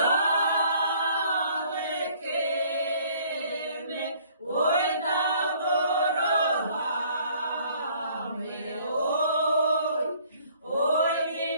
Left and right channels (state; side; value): inverted; both; correlation -0.58